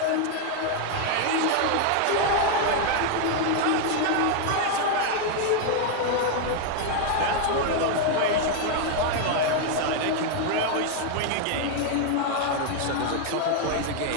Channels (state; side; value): different; both; correlation 0.00